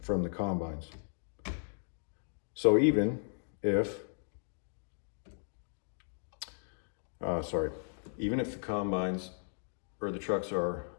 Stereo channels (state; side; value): silent; right; digital silence